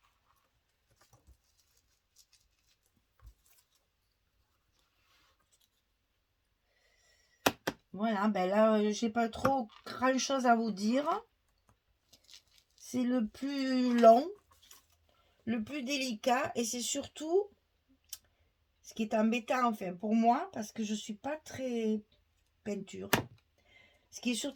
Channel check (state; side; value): identical; both; correlation 1.00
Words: Voilà, ben là, j'ai pas trop grand chose à vous dire. C'est le plus long, le plus délicat, et c'est surtout ce qui est embêtant, enfin, pour moi, parce que je suis pas très peinture. Ce qui est